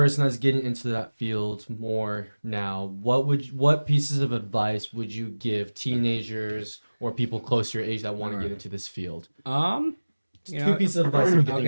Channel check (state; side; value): inverted; both; correlation -1.00